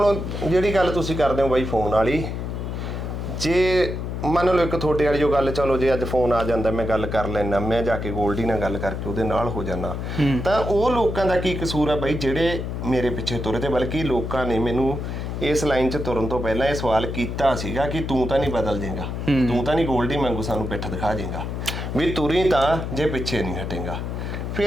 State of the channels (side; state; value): left; noise; hum, 4 dB below the sound